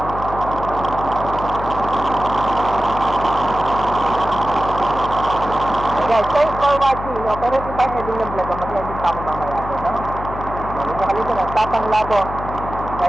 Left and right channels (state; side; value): noise; left; hum, 9 dB below the sound